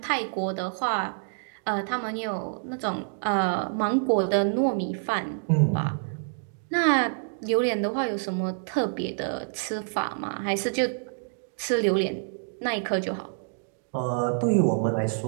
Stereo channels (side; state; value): left; silent; digital silence